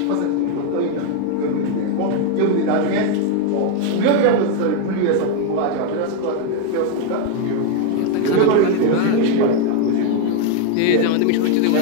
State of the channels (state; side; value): different; both; correlation 0.01